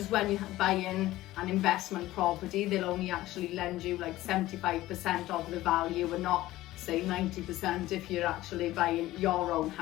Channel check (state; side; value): quieter; right; 16.4 dB